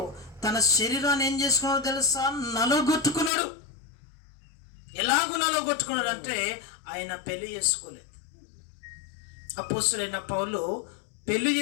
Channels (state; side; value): drops out; right; at 3.3 s